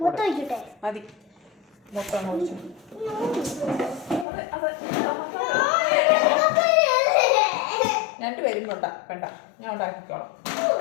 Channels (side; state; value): right; drops out; at 4.2 s